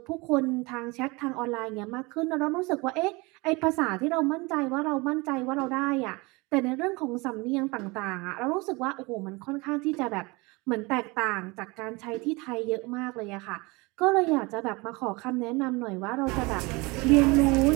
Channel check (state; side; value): quieter; left; 25.4 dB